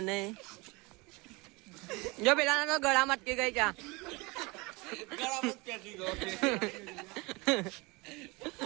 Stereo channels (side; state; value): left; quieter; 25.4 dB